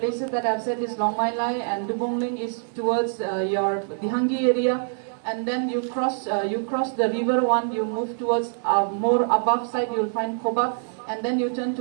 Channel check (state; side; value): silent; left; 62 dB below the other